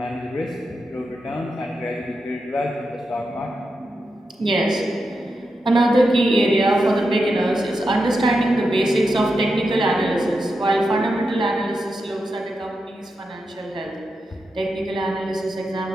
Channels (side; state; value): both; normal; correlation 0.87